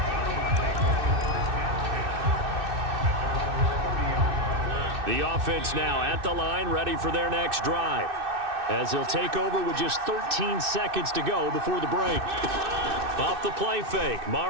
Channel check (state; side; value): late; left; 2.6 ms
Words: The offense now at the line, ready for their next drive. As they'll take over with just 13 seconds to go before the break. Off the play fake,